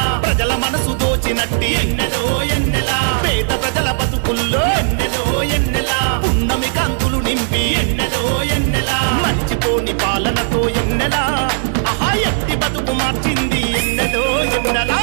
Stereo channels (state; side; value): silent; left; 68 dB below the other